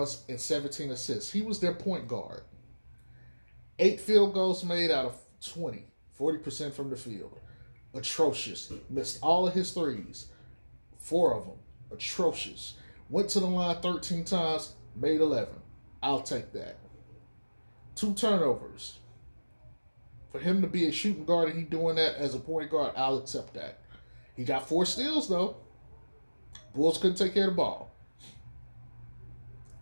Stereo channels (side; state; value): both; inverted; correlation -1.00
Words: and 17 assists. He was their point guard. 8 field goals made out of 20. 40% from the field. Atrocious. Missed all of his threes. 4 of them. Atrocious. Went to the line 13 times, made 11. I'll take that. 2 turnovers. For him to be a shooting guard and he doing that as a point guard, I'll accept that. He got 4 steals, though. Bulls couldn't take care of the ball.